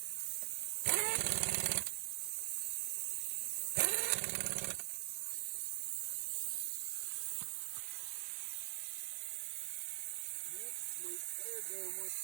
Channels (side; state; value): left; silent; digital silence